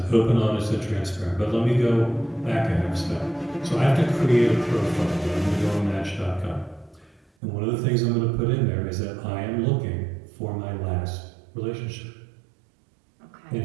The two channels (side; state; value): left; drops out; at 7.2 s